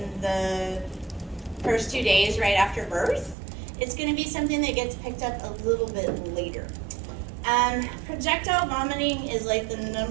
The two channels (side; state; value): left; drops out; at 3.4 s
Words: the first 2 days right after birth. It's going to be something that gets picked up a little bit later. Projectile vomiting is like the